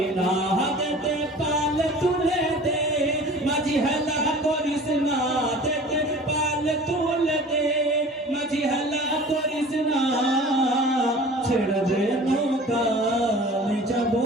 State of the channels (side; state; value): both; normal; correlation 0.43